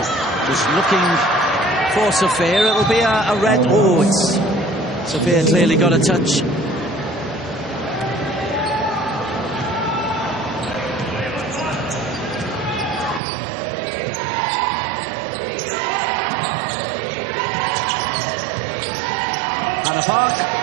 just looking for Sophia. It'll be a red. Oh, it's Sophia clearly got a touch. Hannah Park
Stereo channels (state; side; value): drops out; left; at 13.2 s